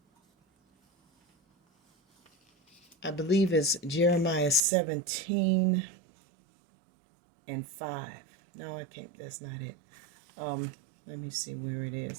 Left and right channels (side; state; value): left; drops out; at 4.6 s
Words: I believe it's Jeremiah 17 and 5. No, I can't. That's not it. Let me see where it